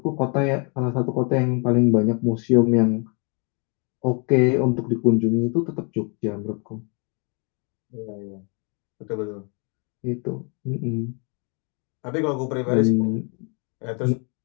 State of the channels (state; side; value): quieter; right; 36.1 dB